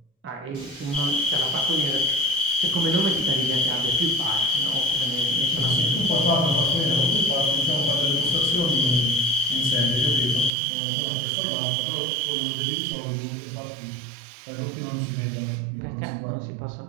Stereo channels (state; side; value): drops out; left; at 10.5 s